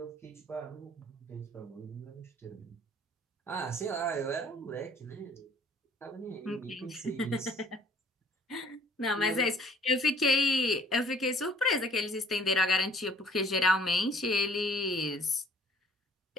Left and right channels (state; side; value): normal; both; correlation 0.57